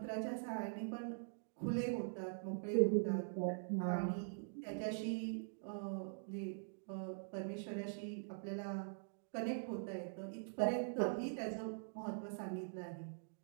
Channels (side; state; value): left; silent; digital silence